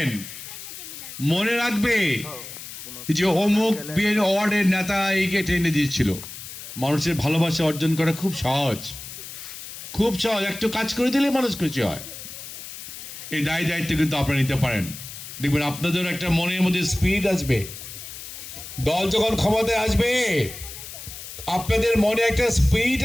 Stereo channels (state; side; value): noise; left; hiss, 12 dB below the sound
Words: মনে রাখবে যে অমুক বিএনপি ওয়ার্ডের নেতা এইকে টেনে দিয়েছিল। মানুষের ভালোবাসা অর্জন করা খুব সহজ, খুব সহজ। একটু কাজ করে দিলে মানুষ খুশি হয়। এই দায়িত্ব কিন্তু আপনারা নিতে পারেন। দেখবেন আপনাদের একটা মনের মধ্যে স্পিরিট আসবে। দল যখন ক্ষমতায় আসবে আপনাদের মনে একটা স্পিরিট